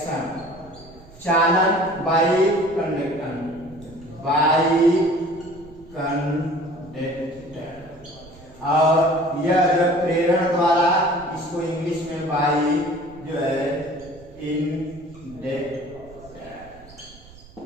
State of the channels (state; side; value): noise; right; rumble, 22 dB below the sound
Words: चालन बाई कंडक्टर, और यह जो प्रेरण द्वारा इसको इंग्लिश में बाई जो है